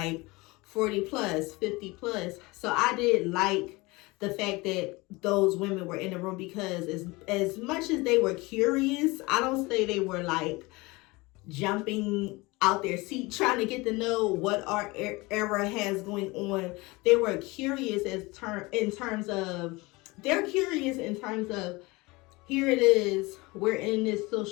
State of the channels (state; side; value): quieter; right; 23.3 dB